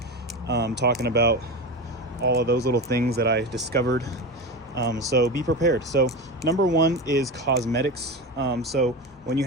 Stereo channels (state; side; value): normal; both; correlation 0.23